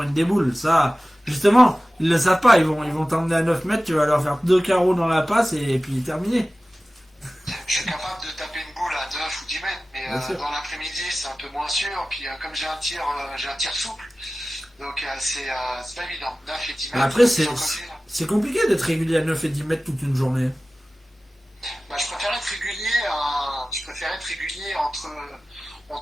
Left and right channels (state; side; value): normal; both; correlation 0.97